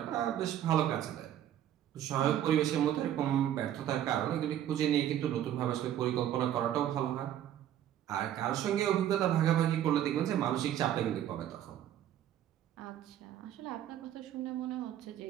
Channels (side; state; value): left; quieter; 11.2 dB